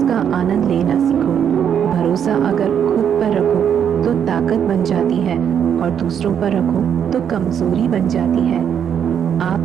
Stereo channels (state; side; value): quieter; left; 8.4 dB